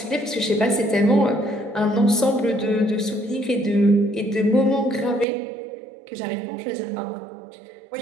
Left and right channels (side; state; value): left; drops out; at 5.2 s